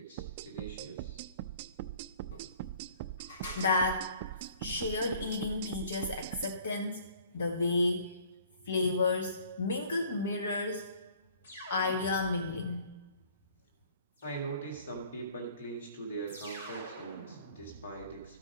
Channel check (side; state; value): both; inverted; correlation -0.54